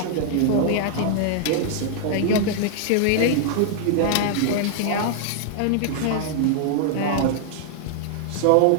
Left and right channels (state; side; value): different; both; correlation 0.00